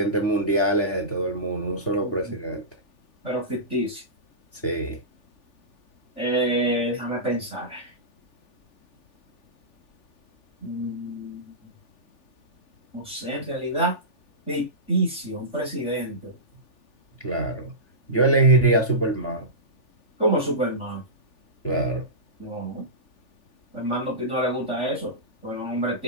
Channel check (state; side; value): late; right; 3.4 ms